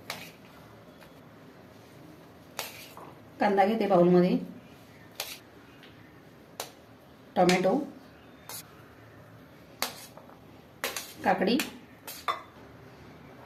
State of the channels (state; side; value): identical; both; correlation 1.00